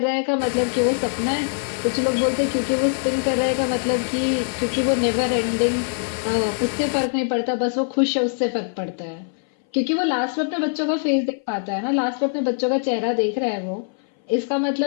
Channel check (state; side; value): silent; right; 59 dB below the other